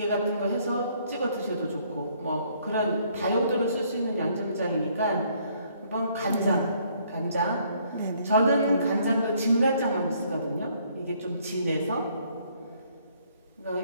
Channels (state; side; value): inverted; both; correlation -0.65